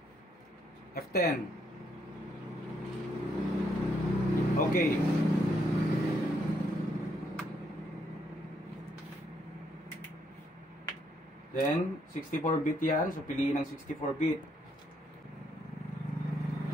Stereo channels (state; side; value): normal; both; correlation 0.74